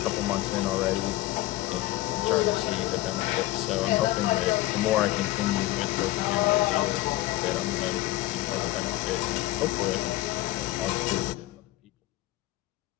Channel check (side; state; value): right; quieter; 17.0 dB